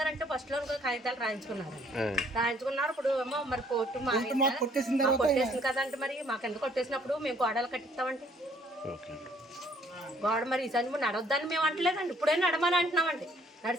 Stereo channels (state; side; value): normal; both; correlation 0.63